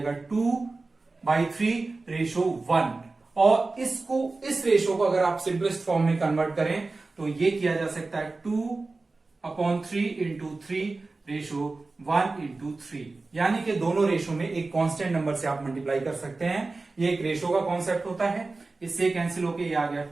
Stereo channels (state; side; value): quieter; left; 3.5 dB